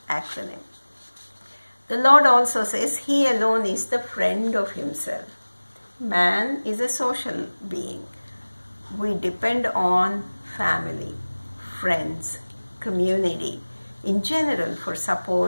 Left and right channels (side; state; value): both; inverted; correlation -1.00